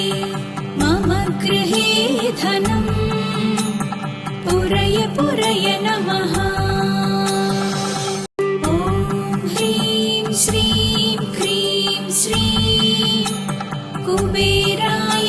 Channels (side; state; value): both; identical; correlation 1.00